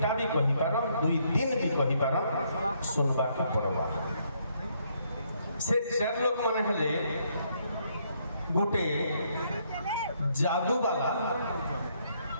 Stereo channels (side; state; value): both; inverted; correlation -0.72